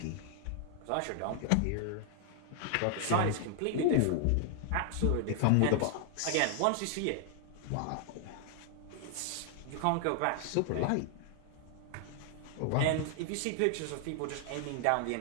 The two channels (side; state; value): both; different; correlation 0.00